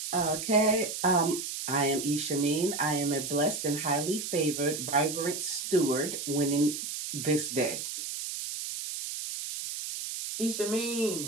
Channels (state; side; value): noise; right; hiss, 6 dB below the sound